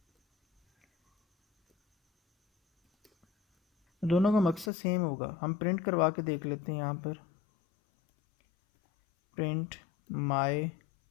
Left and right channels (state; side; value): drops out; right; at 4.7 s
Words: दोनों का मकसद सेम होगा। हम प्रिंट करवा के देख लेते हैं यहाँ पर, प्रिंट माय